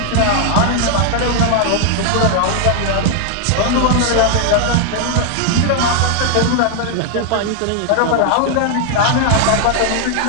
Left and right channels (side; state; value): both; different; correlation 0.00